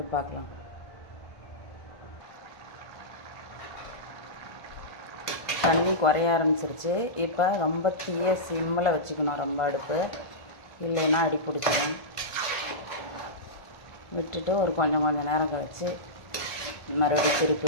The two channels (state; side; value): late; right; 1.5 ms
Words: பார்க்கலாம். தண்ணி குறைய ஆரம்பிச்சிருச்சு. இப்போ ரொம்ப தீய சிம்மில் வச்சுக்கணும் ரொம்ப அடுப்பு, இல்லைன்னா அடி பிடிச்சிடும். விட்டுட்டு ஒரு கொஞ்சம் நேரம் கழித்து மறுபடியும் திருப்பி